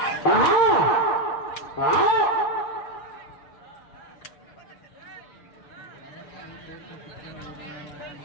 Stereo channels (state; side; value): late; right; 6.8 ms